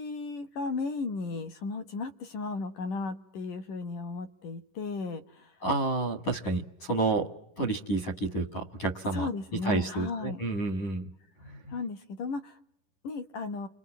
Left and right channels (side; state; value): right; late; 10 ms